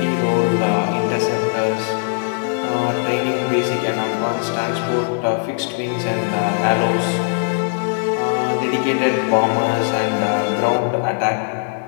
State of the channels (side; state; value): right; silent; digital silence